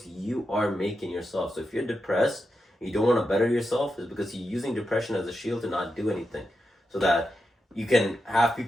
you are making yourself. So if you're depressed, and you don't want to better yourself, it's because you're using depression as a shield to not do anything, so that you can have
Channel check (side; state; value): both; normal; correlation 0.88